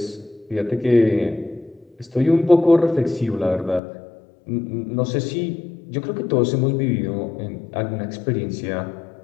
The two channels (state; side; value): drops out; right; at 3.8 s